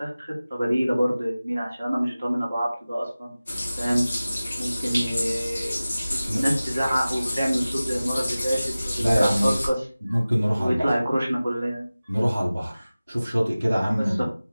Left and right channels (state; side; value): inverted; both; correlation -0.97